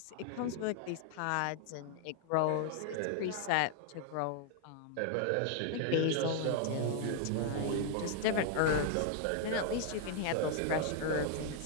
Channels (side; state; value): both; different; correlation 0.00